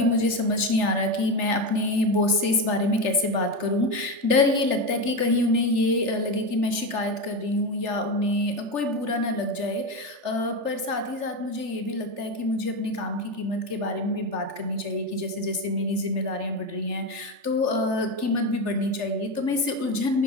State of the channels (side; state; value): left; late; 3.4 ms